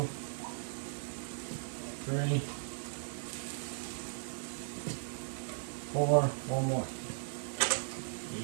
3, 4. One more.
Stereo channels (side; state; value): left; silent; digital silence